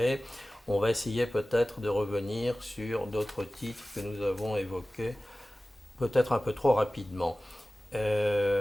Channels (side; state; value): both; normal; correlation 0.97